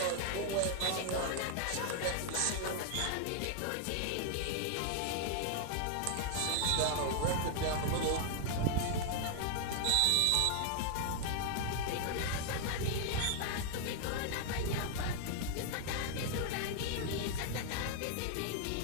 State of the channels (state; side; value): different; both; correlation 0.00